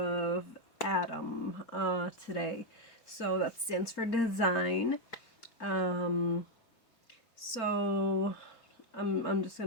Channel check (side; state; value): right; late; 4.4 ms